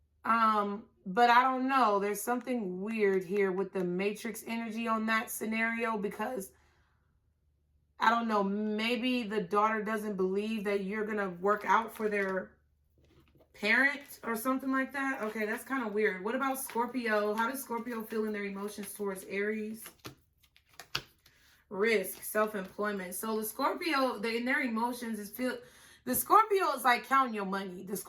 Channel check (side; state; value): both; identical; correlation 1.00